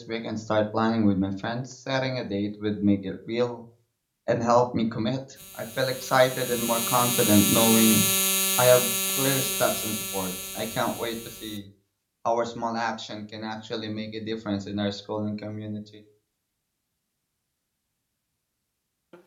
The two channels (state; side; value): identical; both; correlation 1.00